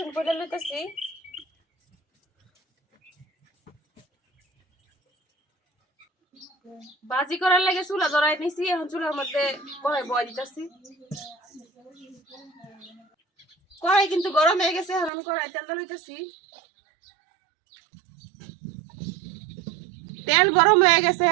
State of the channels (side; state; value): left; drops out; at 15.1 s